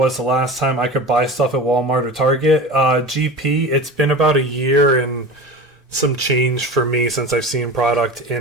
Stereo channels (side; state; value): both; normal; correlation 0.32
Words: the last time I could buy stuff at Walmart or Target. GP, it's been about a year and some change for me since I've seen product